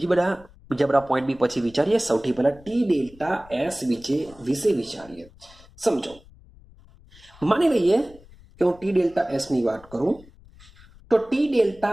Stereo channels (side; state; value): left; noise; rumble, 24 dB below the sound